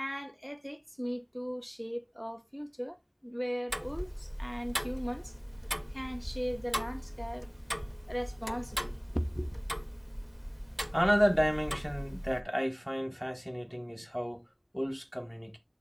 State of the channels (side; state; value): both; identical; correlation 1.00